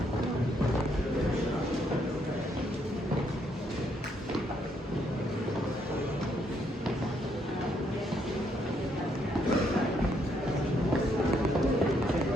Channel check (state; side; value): normal; both; correlation 0.73